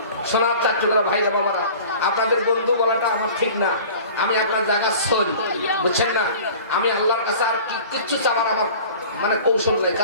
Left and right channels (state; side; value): inverted; both; correlation -0.43